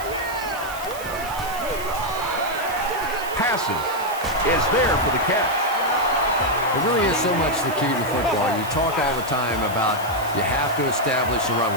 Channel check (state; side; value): noise; right; hiss, 14 dB below the sound